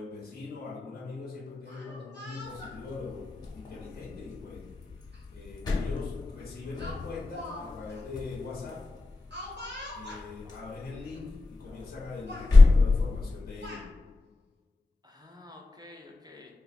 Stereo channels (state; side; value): quieter; right; 3.2 dB